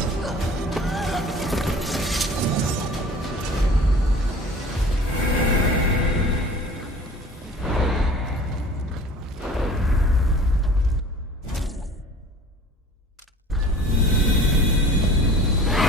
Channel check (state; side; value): normal; both; correlation 0.45